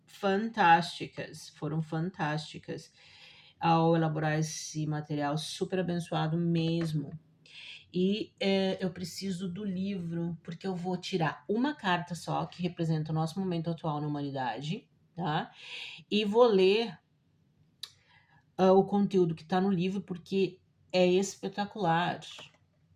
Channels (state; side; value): identical; both; correlation 1.00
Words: fantásticas ao elaborar esse material super abençoado mesmo. E eu preciso do livro, porque eu vou tirar uma carta só, que representa o nosso momento atual na humanidade, tá? E vou ler o conteúdo que está no livro, porque é espetacular.